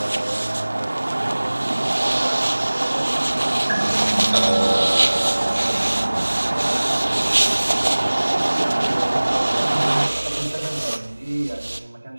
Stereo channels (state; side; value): inverted; both; correlation -1.00